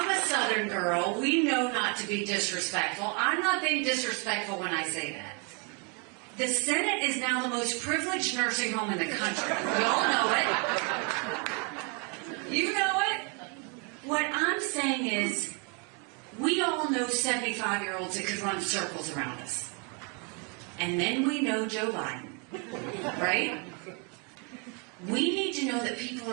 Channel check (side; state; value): left; quieter; 35.5 dB